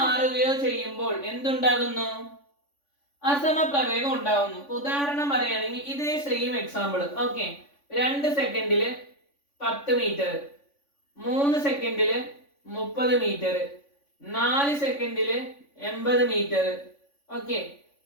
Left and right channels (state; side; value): late; right; 3.5 ms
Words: ചെയ്യുമ്പോൾ എന്തുണ്ടാകുന്നു, അസമപ്രവേഗം ഉണ്ടാകുന്നു. ഉദാഹരണം പറയുകയാണെങ്കിൽ ഇതേ സെയിം എക്സാമ്പിൾ. ഓക്കെ, 2 സെക്കൻഡില് 10 മീറ്റർ, 3 സെക്കൻഡില് 30 മീറ്റർ, 4 സെക്കൻഡില് 80 മീറ്റർ, ഓക്കെ,